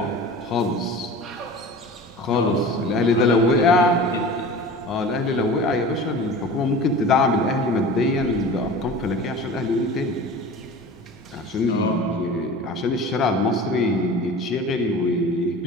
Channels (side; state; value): both; normal; correlation 0.37